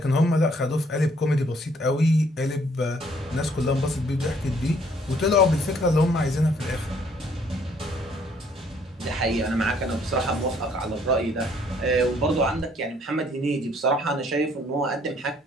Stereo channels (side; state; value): both; normal; correlation 0.63